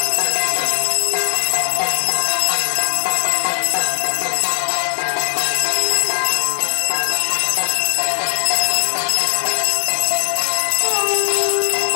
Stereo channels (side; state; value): right; silent; digital silence